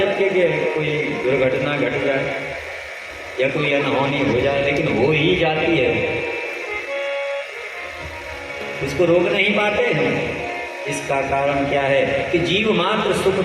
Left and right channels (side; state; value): both; identical; correlation 1.00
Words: के कोई दुर्घटना घट जाए या कोई अनहोनी हो जाए? लेकिन हो ही जाती है, उसको रोक नहीं पाते हैं। इसका कारण क्या है कि जीव मात्र सुख